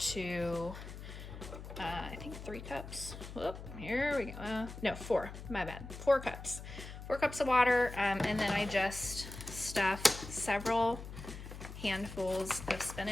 to I think 3 cups. Whoop, here we go. No, 4. My bad. 4 cups. 4 cups of water, and then I just stuffed several handfuls of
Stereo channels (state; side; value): noise; left; hum, 11 dB below the sound